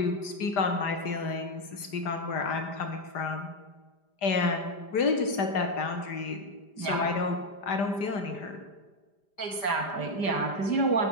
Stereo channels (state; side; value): late; right; 5.0 ms